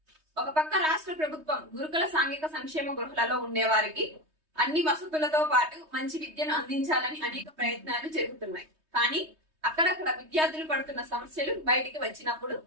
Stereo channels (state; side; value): late; left; 3.2 ms